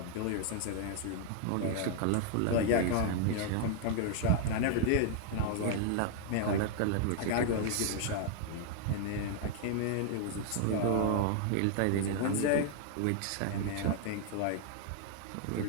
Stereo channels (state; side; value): different; both; correlation 0.00